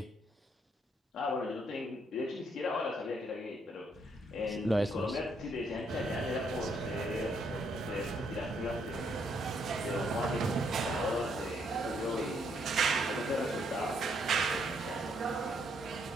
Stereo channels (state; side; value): normal; both; correlation 0.72